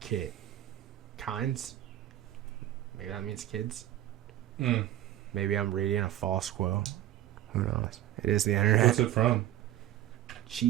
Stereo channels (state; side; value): quieter; left; 13.1 dB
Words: kinds. Maybe that means kids. Maybe I'm reading a false quote. Who knows? It is the internet. What's it from?